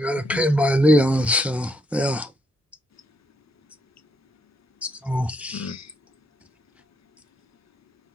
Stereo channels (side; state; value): both; normal; correlation 0.76